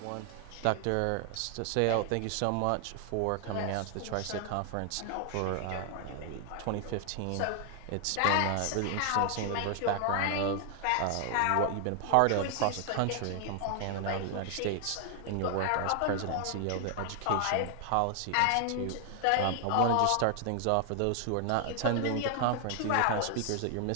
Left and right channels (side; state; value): both; different; correlation 0.00